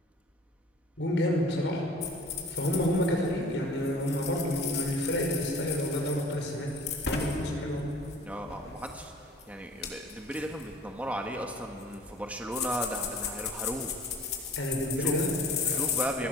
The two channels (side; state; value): both; normal; correlation 0.47